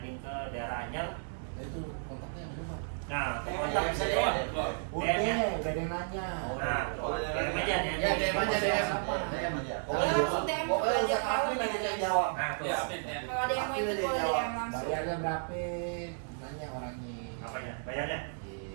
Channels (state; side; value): silent; left; digital silence